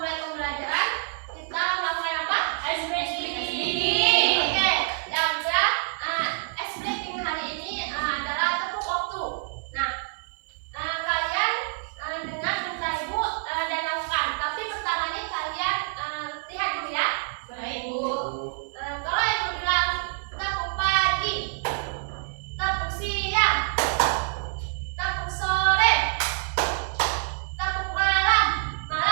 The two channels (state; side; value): silent; left; 60 dB below the other